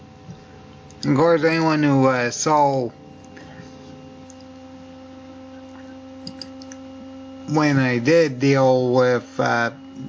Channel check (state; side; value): identical; both; correlation 1.00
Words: Of course, anyone who saw when I did deal with